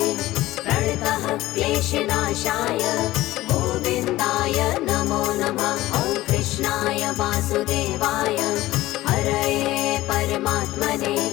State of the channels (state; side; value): quieter; right; 16.7 dB